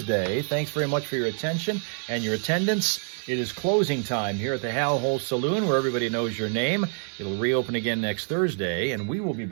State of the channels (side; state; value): left; silent; 61 dB below the other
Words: Thanks very much for your attention and your attendance. It is closing time here at the Hal Hole Saloon, where everybody knows your name. It'll reopen again next Thursday, and we will be